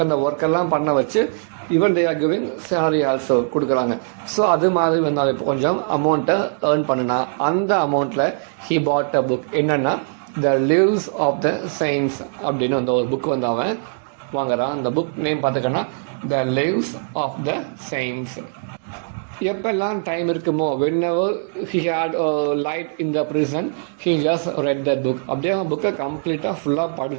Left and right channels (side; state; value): left; silent; 65 dB below the other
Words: அந்த ஒர்க்கெல்லாம் பண்ண வச்சு even they are giving salary also கொடுக்குறாங்க. ஸோ அது மாதிரி வந்தால் இப்போ கொஞ்சம் அமௌண்ட்டை ஏர்ன் பண்ணினா அந்த அமௌண்ட்டில் ஹி பாட் அ புக். என்னென்னா த லிவ்ஸ் ஆஃப் த செயின்ட்ஸ் அப்படின்னு வந்து ஒரு புக் வந்து அவன் வாங்குறான். அந்த புக் நேம் பார்த்துக்கன்னா the lives of the saints. எப்பெல்லாம் டைம் இருக்குமோ, whenever he had a light in the prison, he just read that book. அப்படியே அவன் புக்கை கம்ப்ளீட்டாக ஃபுல்லாக